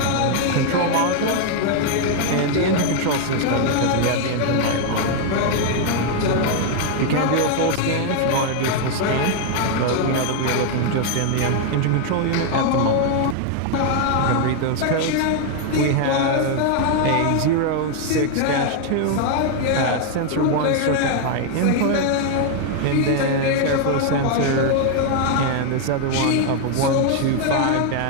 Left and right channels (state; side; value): different; both; correlation 0.00